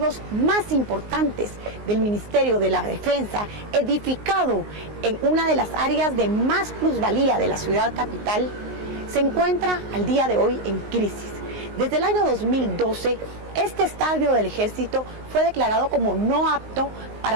más importantes del Ministerio de la Defensa, edificado en una de las áreas de más plusvalía de la ciudad capital, se encuentra al día de hoy en crisis. Desde el año 2012, este estadio del Ejército fue declarado como no apto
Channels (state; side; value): late; left; 19 ms